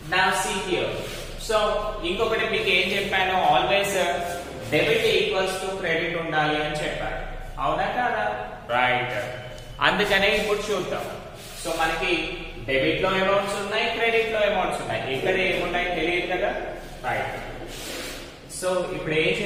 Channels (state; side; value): identical; both; correlation 1.00